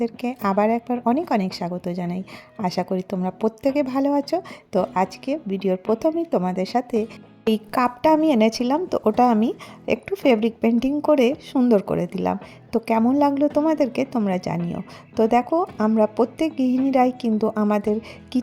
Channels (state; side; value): identical; both; correlation 1.00